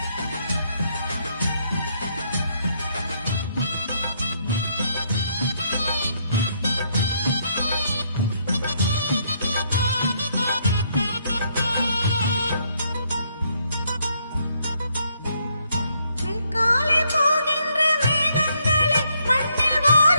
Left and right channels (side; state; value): both; inverted; correlation -0.73